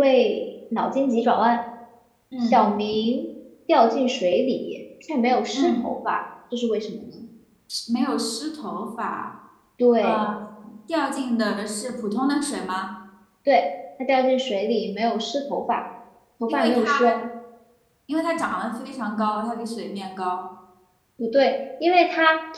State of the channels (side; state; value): both; identical; correlation 1.00